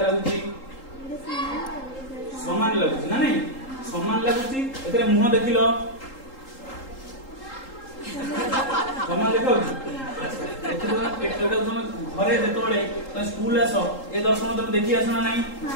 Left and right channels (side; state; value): right; late; 3.8 ms